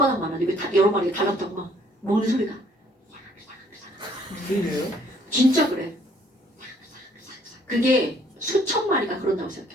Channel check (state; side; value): normal; both; correlation 0.62